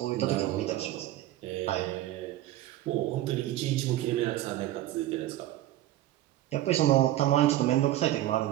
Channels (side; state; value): left; quieter; 14.6 dB